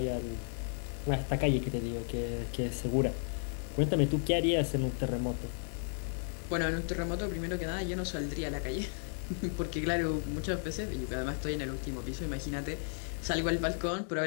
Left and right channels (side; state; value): right; silent; digital silence